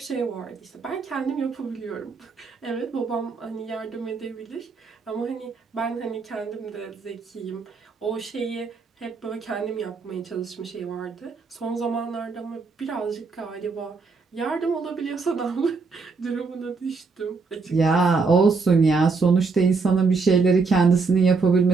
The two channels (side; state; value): left; quieter; 4.5 dB